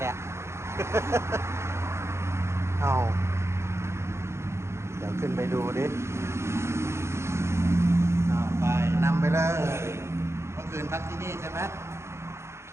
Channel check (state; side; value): late; left; 0.13 ms